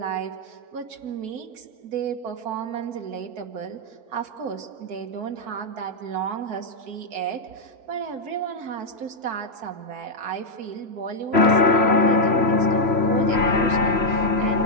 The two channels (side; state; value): left; late; 4.6 ms